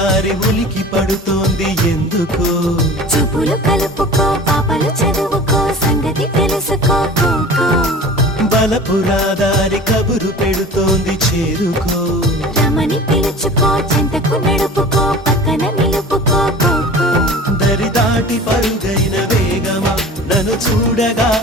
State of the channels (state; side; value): normal; both; correlation 0.40